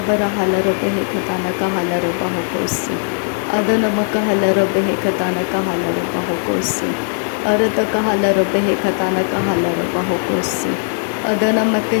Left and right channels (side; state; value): right; silent; 66 dB below the other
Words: हालर बेहे खताना का हालर बाहोकोसे अदन मक हलर बेहे खताना का हालर बाहोकोसे अरत का हालर बेहे खताना का हालर बाहोकोसे अदन मक